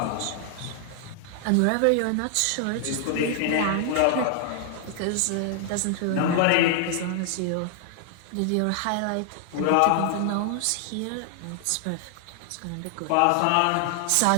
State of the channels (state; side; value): different; both; correlation 0.00